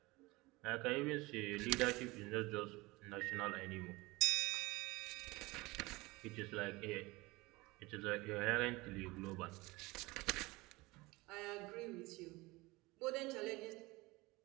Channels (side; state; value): left; quieter; 22.2 dB